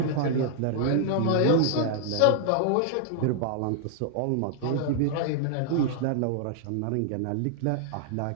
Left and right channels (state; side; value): different; both; correlation -0.01